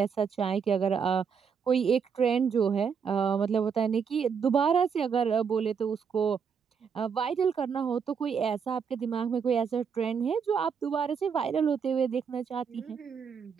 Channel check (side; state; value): left; quieter; 6.5 dB